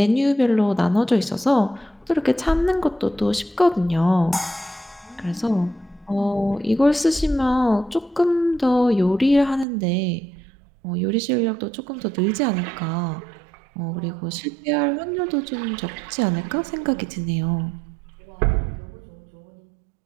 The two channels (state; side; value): drops out; left; at 9.7 s